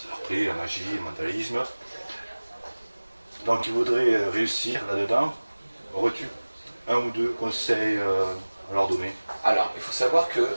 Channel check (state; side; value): inverted; both; correlation -1.00